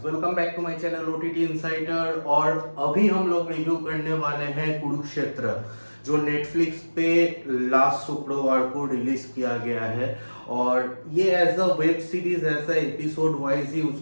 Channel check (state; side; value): inverted; both; correlation -1.00